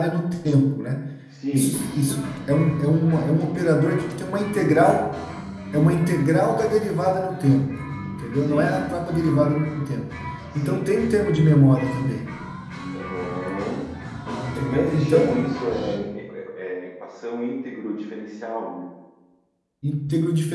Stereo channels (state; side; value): identical; both; correlation 1.00